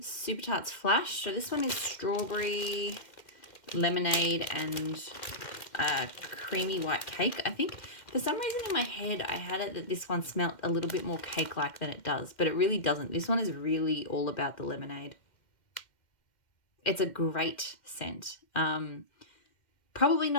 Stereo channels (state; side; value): late; right; 2.1 ms